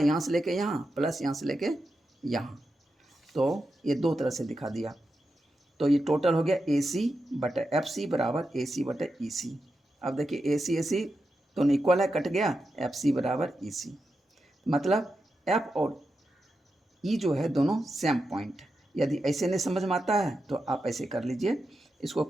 से लेके यहाँ प्लस यहाँ से लेके यहाँ, तो ये 2 तरह से दिखा दिया। तो ये टोटल हो गया ए सी बटा एफ सी बराबर ए सी बटा ई सी। अब देखिए ए सी दोनों इक्वल है, कट गया, एफ सी बराबर ई सी, मतलब एफ और ई जो है दोनों सेम पॉइंट। यदि ऐसे नहीं समझ में आता है तो आप ऐसे कर लीजिए, इसको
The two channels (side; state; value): both; normal; correlation 0.88